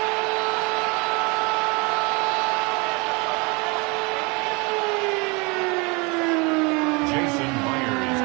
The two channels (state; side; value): quieter; left; 29.1 dB